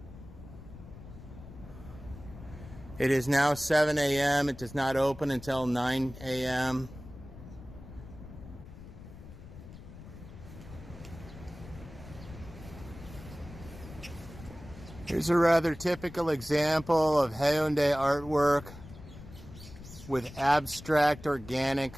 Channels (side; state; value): left; noise; rumble, 15 dB below the sound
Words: It is now 7 a.m. It does not open until 9 a.m. Here's a rather typical example of Haeundae artwork with abstract